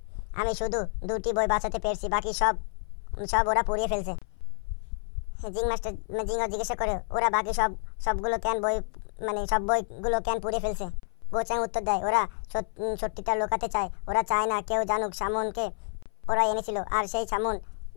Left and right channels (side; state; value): right; silent; 59 dB below the other